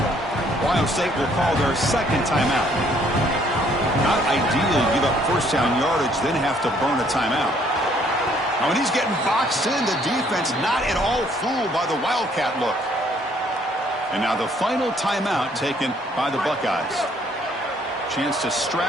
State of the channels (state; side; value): normal; both; correlation 0.64